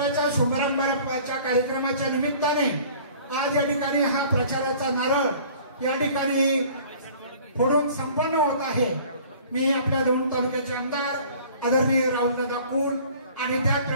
शुभारंभाच्या कार्यक्रमाच्या निमित्ताने आज या ठिकाणी हा प्रचाराचा नारळ या ठिकाणी फोडून संपन्न होत आहे। मी आपल्या दौंड तालुक्याचे आमदार आदरणीय राहुलदादा कुल आणि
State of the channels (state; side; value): inverted; both; correlation -0.49